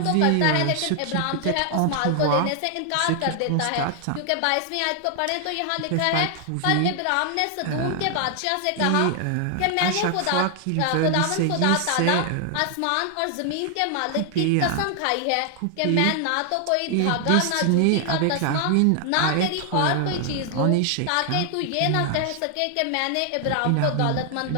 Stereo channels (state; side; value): different; both; correlation 0.00